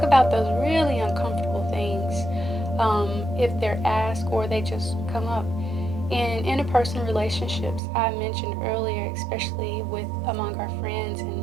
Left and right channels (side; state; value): left; drops out; at 7.8 s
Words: about those really uncomfortable things if they're asked or they just come up. In interpersonal relationships, I mentioned earlier, especially with among our friends